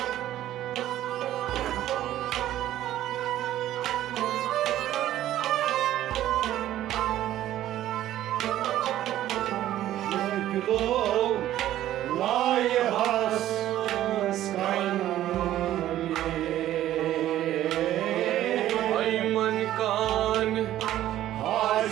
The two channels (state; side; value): quieter; left; 13.1 dB